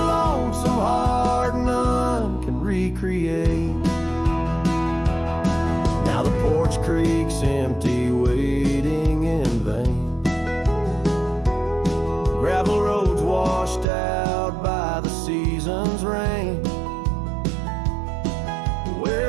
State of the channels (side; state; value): left; drops out; at 13.9 s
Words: lonesome heart none can recreate. Now the porch creak's empty, waiting in vain. Gravel roads washed out by the season's rain.